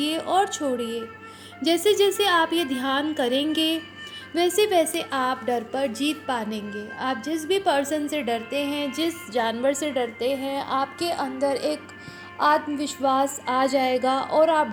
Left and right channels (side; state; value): both; identical; correlation 1.00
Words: और छोड़िए। जैसे जैसे आप ये ध्यान करेंगे, वैसे वैसे आप डर पर जीत पाएंगे। आप जिस भी पर्सन से डरते हैं, जिस जानवर से डरते हैं, आपके अंदर एक आत्मविश्वास आ जाएगा और आप